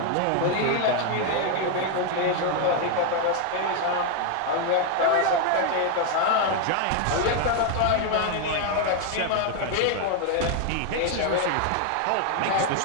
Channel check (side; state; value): both; different; correlation 0.01